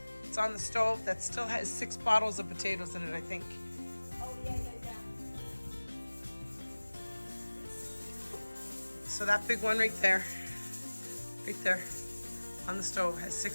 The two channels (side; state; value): both; inverted; correlation -1.00